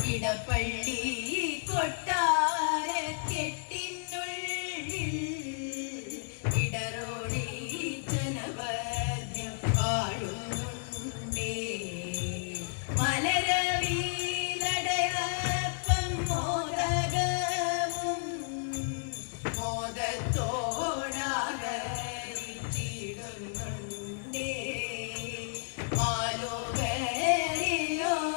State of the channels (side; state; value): right; silent; 56 dB below the other